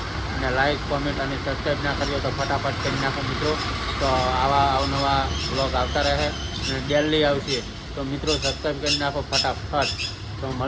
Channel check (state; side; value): identical; both; correlation 1.00